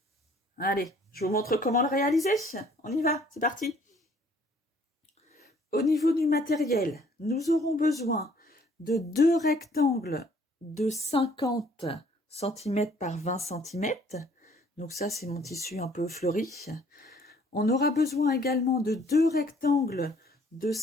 Allez, je vous montre comment le réaliser. On y va, c'est parti! Au niveau du matériel, nous aurons besoin de deux rectangles de 50 cm par 20 cm. Donc ça, c'est mon tissu un peu fleuri. On aura besoin également de deux rectangles de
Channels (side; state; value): both; normal; correlation 0.60